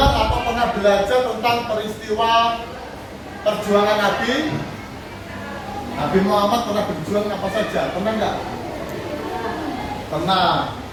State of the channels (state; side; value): identical; both; correlation 1.00